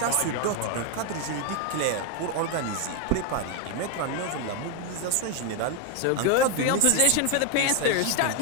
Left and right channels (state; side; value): different; both; correlation 0.01